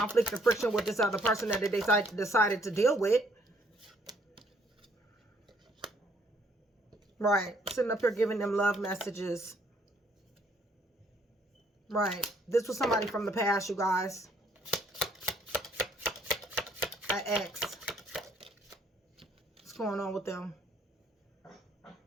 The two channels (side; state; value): both; normal; correlation 0.66